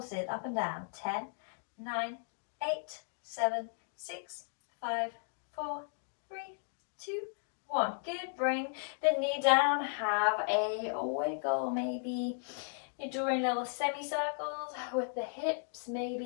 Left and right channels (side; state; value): right; silent; digital silence